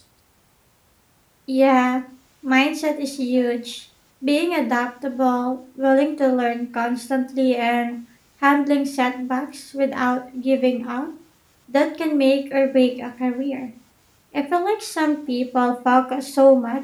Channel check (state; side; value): identical; both; correlation 1.00